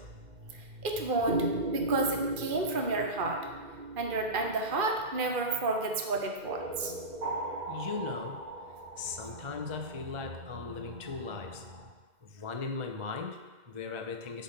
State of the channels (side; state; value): left; late; 2.0 ms